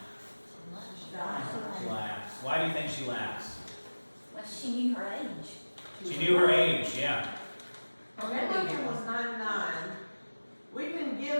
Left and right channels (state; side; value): inverted; both; correlation -1.00